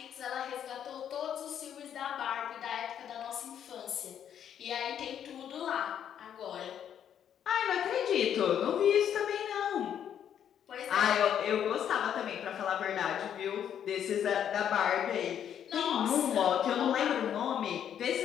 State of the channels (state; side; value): quieter; right; 9.3 dB